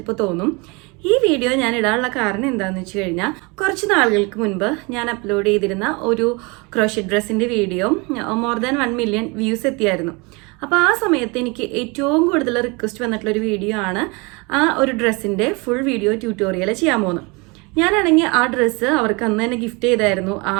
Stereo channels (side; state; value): left; quieter; 28.1 dB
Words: തോന്നും. ഈ വീഡിയോ ഞാൻ ഇടാനുള്ള കാരണം എന്താണെന്ന് വെച്ച് കഴിഞ്ഞാൽ കുറച്ച് നാളുകൾക്ക് മുൻപ് ഞാൻ അപ്ലോഡ് ചെയ്തിരുന്ന ഒരു ക്രോഷറ്റ് ഡ്രസ്സിൻ്റെ video more than 1 million views എത്തിയായിരുന്നു. അപ്പോൾ ആ സമയത്ത് എനിക്ക് ഏറ്റവും കൂടുതൽ റിക്വസ്റ്റ് വന്നിട്ടുള്ളൊരു വീഡിയോ ആണ് ആ ഒരു ഡ്രസ്സിൻ്റെ ഫുൾ വീഡിയോ ട്യൂട്ടോറിയൽ ചെയ്യാൻ പോകുന്നത്. ഞാനാണെങ്കിൽ ആ ഡ്രസ്സ് അവർക്ക് അന്ന് തന്നെ ഗിഫ്റ്റ് ചെയ്തായിരുന്നു ആ